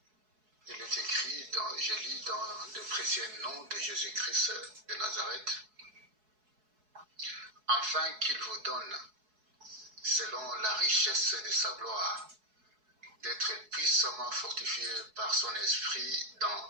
Il est écrit, je lis dans le précieux nom de Jésus-Christ de Nazareth, afin qu'il vous donne, selon la richesse de sa gloire, d'être puissamment fortifié par son esprit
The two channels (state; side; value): late; left; 4.7 ms